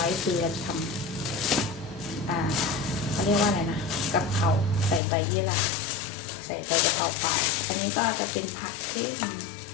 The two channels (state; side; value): drops out; right; at 5.0 s